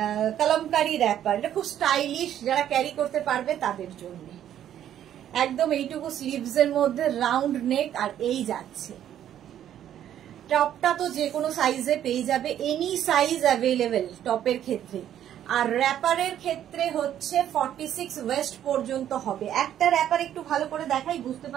কলমকারী র্যাপার। এটা খুব স্টাইলিশ, যারা ক্যারি করতে পারবে তাদের জন্য। একদম এইটুকু স্লিভস এর মধ্যে, রাউন্ড নেক, আর এই যাচ্ছে। টপটা তো যে কোনো সাইজে পেয়ে যাবে, এনি সাইজ অ্যাভেলেবেল টপের ক্ষেত্রে। আর র্যাপারের ক্ষেত্রে হচ্ছে 46 ওয়েস্ট পর্যন্ত হবে। একটা র্যাপার একটু ভালো করে দেখাই, বুঝতে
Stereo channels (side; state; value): left; quieter; 10.8 dB